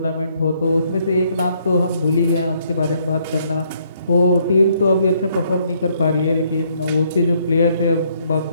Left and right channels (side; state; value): both; inverted; correlation -0.69